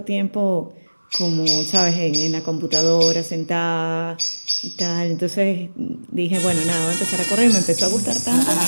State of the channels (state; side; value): inverted; both; correlation -1.00